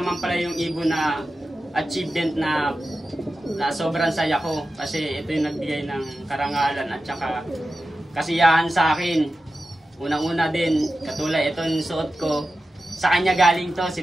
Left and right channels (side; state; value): both; normal; correlation 0.93